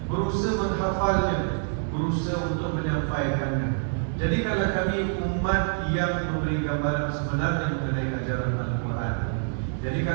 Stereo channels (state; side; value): silent; left; 57 dB below the other